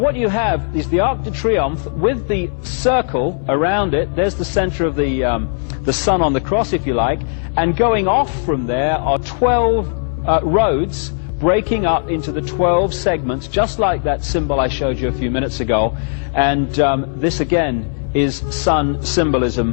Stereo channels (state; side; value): silent; right; digital silence